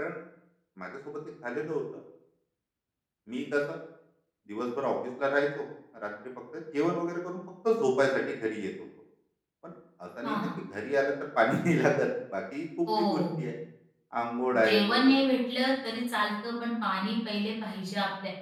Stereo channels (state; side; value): identical; both; correlation 1.00